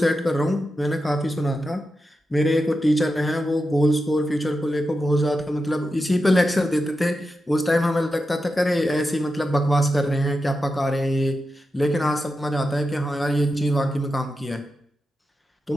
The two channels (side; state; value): both; normal; correlation 0.89